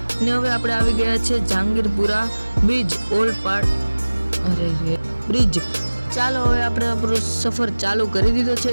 અને હવે આપણે આવી ગયા છે જહાંગીરપુરા બ્રિજ, ઓલપાડ બ્રિજ. ચાલો, હવે આપણે આપણો સફર ચાલુ કરી દીધો છે.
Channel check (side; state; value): both; inverted; correlation -1.00